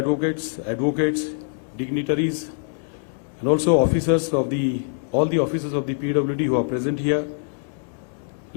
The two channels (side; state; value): right; silent; 59 dB below the other